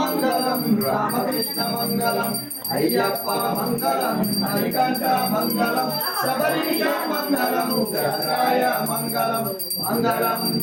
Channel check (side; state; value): both; identical; correlation 1.00